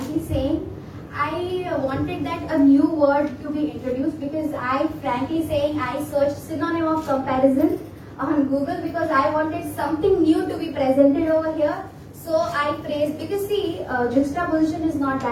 saying, I wanted that a new word to be introduced because I searched synonym of comparison on Google because I wanted something new to be presented over here. So I phrased, because see, juxtaposition is not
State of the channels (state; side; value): identical; both; correlation 1.00